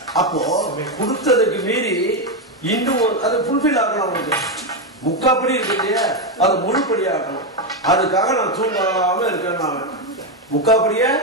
அப்போ கொடுத்ததுக்கு மீறி இன்னும் அது ஃபுல்ஃபில் ஆகணும். அவனுக்கு 3/4 படி இருக்கு இல்லையா, அதை முழுப்படி ஆகணும். அதுக்காக நான் தூங்காம இருக்கேன். நான் 3/4 படிய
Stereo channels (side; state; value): both; normal; correlation 0.07